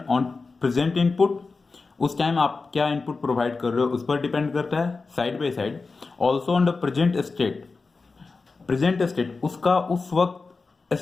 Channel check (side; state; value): right; quieter; 4.1 dB